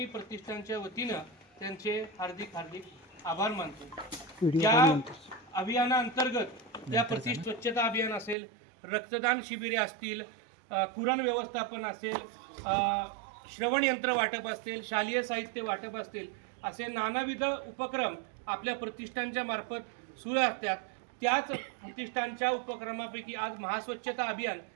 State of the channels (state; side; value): drops out; left; at 8.3 s